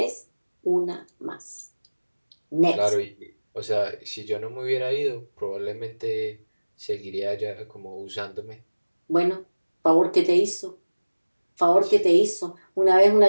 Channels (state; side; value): inverted; both; correlation -1.00